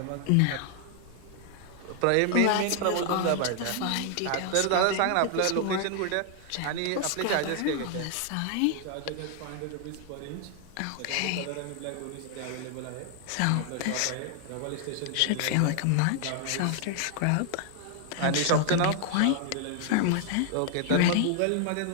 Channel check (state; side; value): different; both; correlation 0.00